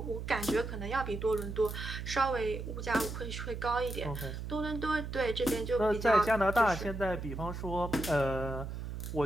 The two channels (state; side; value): noise; right; hum, 6 dB below the sound